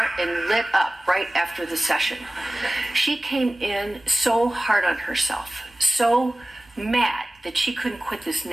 and lit up right after the session. She came in so hard on herself, so mad that she couldn't quit this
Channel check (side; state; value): both; normal; correlation 0.97